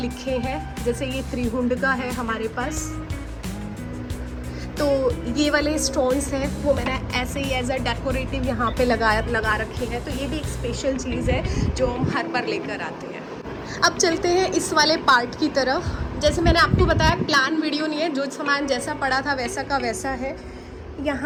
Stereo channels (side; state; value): both; identical; correlation 1.00